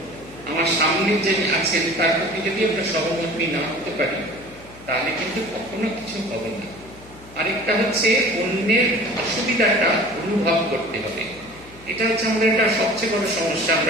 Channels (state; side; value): noise; left; hum, 21 dB below the sound